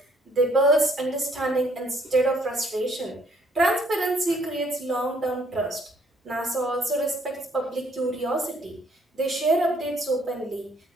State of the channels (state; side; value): normal; both; correlation 0.65